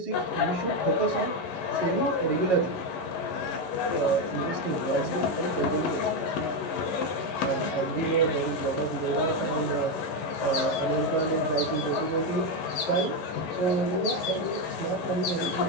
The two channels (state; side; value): late; right; 11 ms